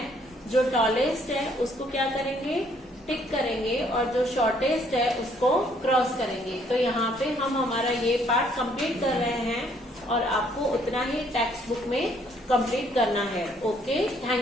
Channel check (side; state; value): both; normal; correlation 0.66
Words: जो टॉलेस्ट है उसको क्या करेंगे? टिक करेंगे और जो शॉर्टेस्ट है उसको क्रॉस करेंगे। तो यहाँ पे हम हमारा ये पार्ट कंप्लीट कर रहे हैं और आपको उतना ही टेक्स्ट बुक में कंप्लीट करना है। Okay,